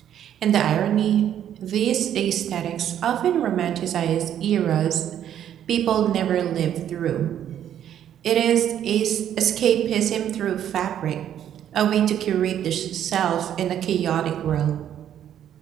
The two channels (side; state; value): left; quieter; 10.3 dB